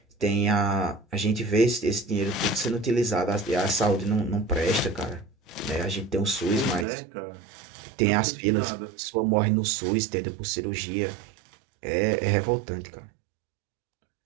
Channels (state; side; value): drops out; left; at 6.9 s